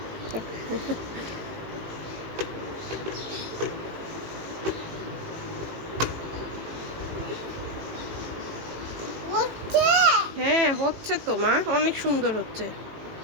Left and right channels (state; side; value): late; left; 18 ms